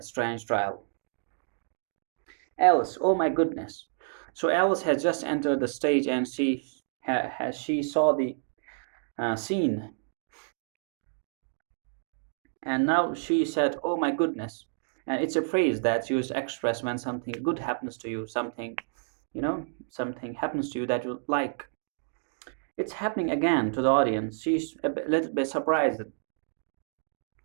strange trial. Alice, oh my goodness. So Alice has just entered the stage and she saw the scene, and now she said, oh my goodness. And it's a phrase that's used to express when something good happens to you, something happens to you that you like. It's happening again to the audience. She's little bit surprised,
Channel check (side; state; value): left; silent; digital silence